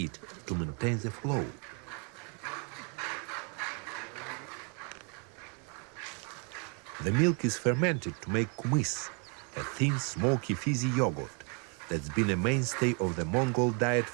it to maintain the flow. The milk is fermented to make kumis, a thin, smoky, fizzy yogurt that's been a mainstay of the Mongol diet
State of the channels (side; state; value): left; quieter; 35.4 dB